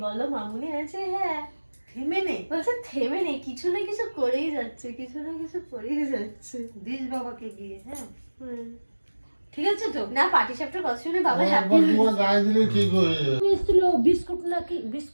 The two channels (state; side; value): inverted; both; correlation -1.00